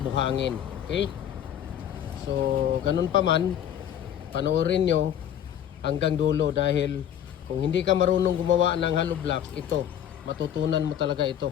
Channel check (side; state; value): right; quieter; 10.0 dB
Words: buhangin. Okay? So ganun pa man, panoorin nyo hanggang dulo dahil kung hindi ka marunong gumawa ng hollow blocks, ito, matutunan mo talaga ito.